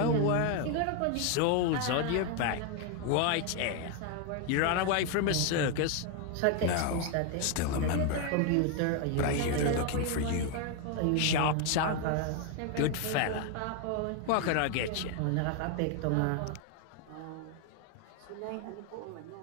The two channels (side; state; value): both; different; correlation 0.01